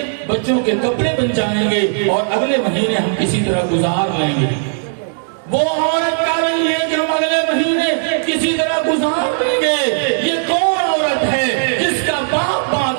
بچوں کے کپڑے بن جائیں گے, اور اگلے مہینے ہم کسی طرح گزار لیں گے. وہ عورت کہہ رہی ہے کہ ہم اگلے مہینے کسی طرح گزار لیں گے. یہ کون عورت ہے جس کا باپ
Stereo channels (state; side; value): silent; left; digital silence